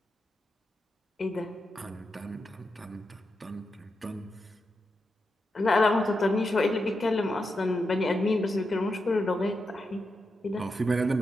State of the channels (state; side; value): normal; both; correlation 0.87